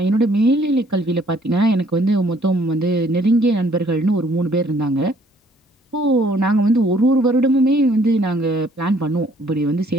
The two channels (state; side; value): normal; both; correlation 0.62